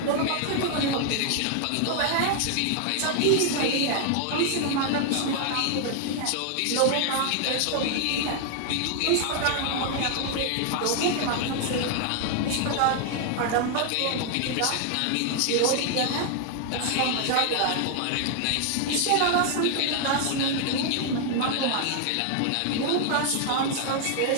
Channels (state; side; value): different; both; correlation 0.00